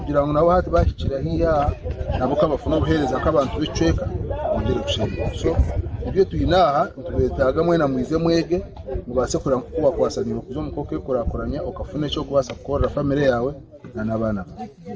ngo nabo hati bashikira hiya nabo kabafuna guhereza nk'abantu bicweka ongere gushira so ibyo tuyinaha tubetaga mwena mwize mwege mubase kura kuba kwasanira kuzo mukoke kurakoranya ukafune cyo kubasa gukora family yawe n'abana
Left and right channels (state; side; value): identical; both; correlation 1.00